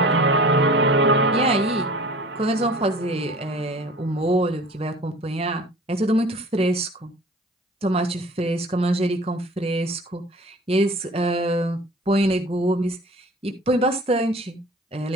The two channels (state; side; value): normal; both; correlation 0.43